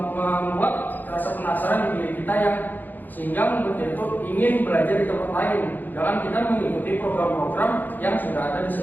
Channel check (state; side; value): late; right; 0.086 ms